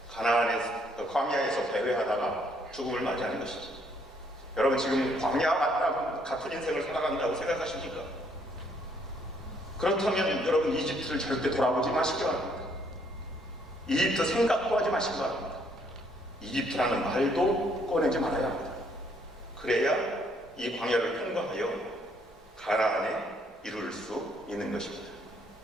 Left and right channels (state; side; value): normal; both; correlation 0.68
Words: 광야에서 배회하다가 죽음을 맞이하는 것이죠. 여러분, 지금 광야 같은 인생을 살아간다고 생각하십니까? 그렇다면 여러분, 이집트를 절대 돌아보지 마시기 바랍니다. 이집트 생각도 하지 마시기 바랍니다. 이집트라는 말도 꺼내지 말아야 합니다. 그래야 이 광야를 통과하여 가나안에 이룰 수 있는 것입니다.